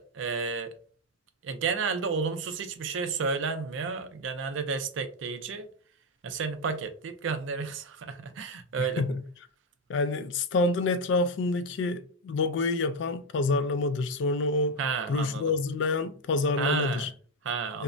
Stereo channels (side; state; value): both; normal; correlation 0.07